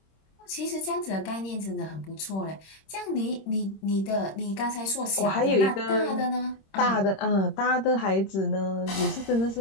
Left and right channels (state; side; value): late; right; 26 ms